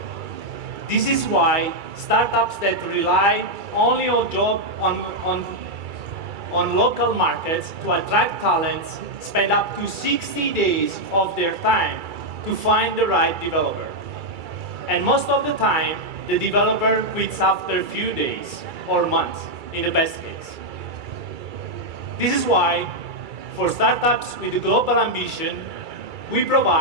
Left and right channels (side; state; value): left; late; 2.3 ms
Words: This is why startups that rely only on local markets to attract talents spend up to 60 days of their time to find the right developer. And most of the time, the developer quits after a few days or months, in the best case. This is why, for startups with a global ambition, we